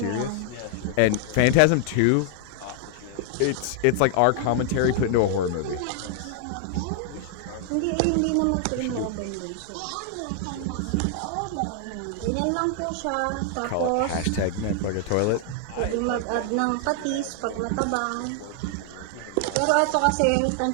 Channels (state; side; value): different; both; correlation 0.00